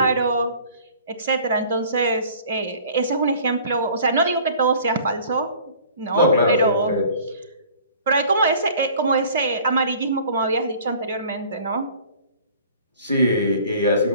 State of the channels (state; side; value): inverted; both; correlation -0.49